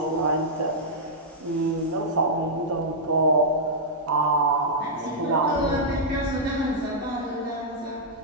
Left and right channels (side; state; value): both; normal; correlation -0.08